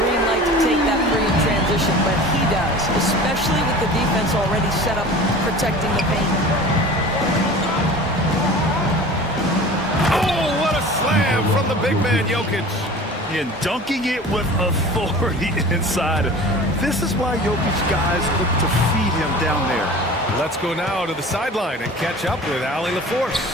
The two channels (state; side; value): normal; both; correlation 0.39